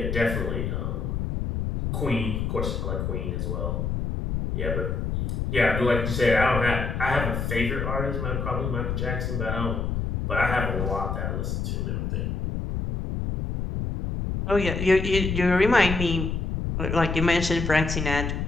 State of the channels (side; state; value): left; noise; rumble, 2 dB below the sound